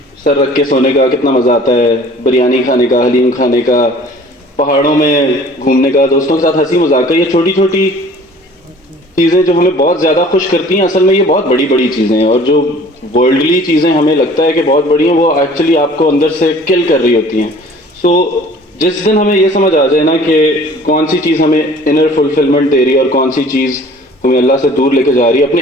سر رکھ کے سونے کا کتنا مزہ آتا ہے, بریانی کھانے کا, حلیم کھانے کا, پہاڑوں میں گھومنے کا, دوستوں کے ساتھ ہنسی مذاق کا. یہ چھوٹی چھوٹی چیزیں جو ہمیں بہت زیادہ خوش کرتی ہیں, اصل میں یہ بہت بڑی بڑی چیزیں ہیں. اور جو ورلڈلی چیزیں ہمیں لگتا ہے کہ بہت بڑی ہیں, وہ ایکچولی آپ کو اندر سے کل کر رہی ہوتی ہیں. سو جس دن ہمیں یہ سمجھ آ جائے نا کہ کون سی چیز ہمیں انر فلفلمنٹ دے رہی ہے اور کون سی چیز ہمیں اللہ سے دور لے کے جا رہی ہے, اپنے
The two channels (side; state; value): both; normal; correlation 0.49